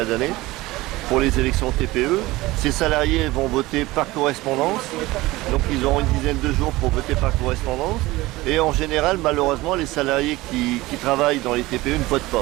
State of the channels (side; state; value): left; quieter; 19.3 dB